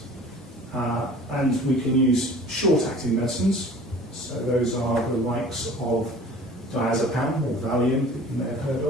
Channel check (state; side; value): normal; both; correlation 0.45